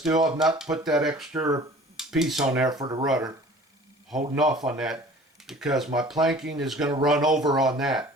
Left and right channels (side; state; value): both; normal; correlation 0.46